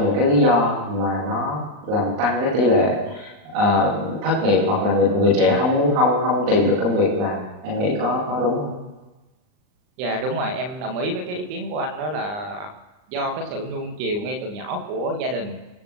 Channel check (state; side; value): late; left; 39 ms